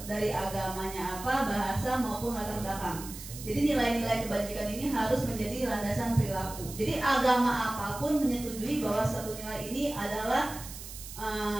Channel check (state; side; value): noise; right; hiss, 12 dB below the sound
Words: dari agamanya apa, bahasa maupun latar belakang. Jadi nilai-nilai kebajikan ini harus menjadi landasan perilaku. Jadi agama apapun menyetujui bahwa satu nilai ini adalah